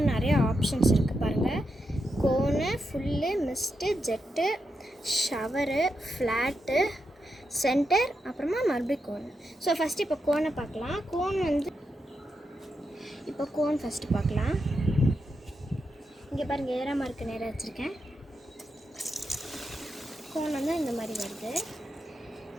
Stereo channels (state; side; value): normal; both; correlation 0.85